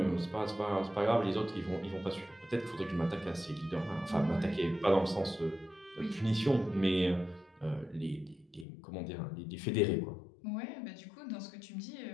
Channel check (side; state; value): right; drops out; at 8.7 s